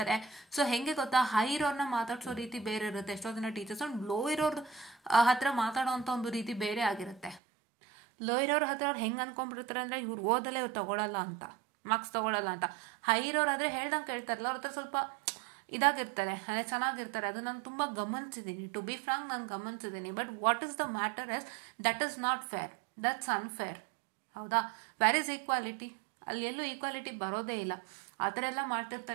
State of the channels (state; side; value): drops out; left; at 7.4 s